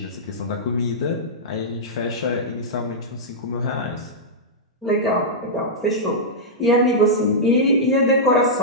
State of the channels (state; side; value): normal; both; correlation -0.11